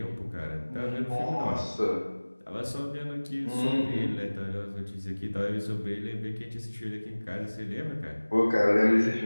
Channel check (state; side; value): inverted; both; correlation -1.00